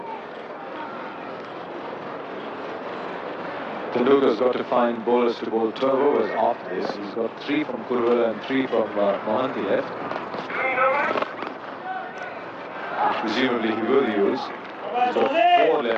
Tendulkar's got to find bowlers to bowl 12 overs after this. He's got 3 from Kurwala and 3 from Mohanty left. Presumably he will use. He's got 4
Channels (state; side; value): identical; both; correlation 1.00